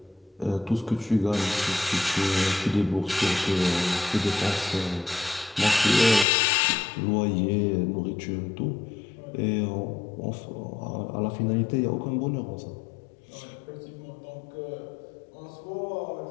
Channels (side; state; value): right; drops out; at 6.2 s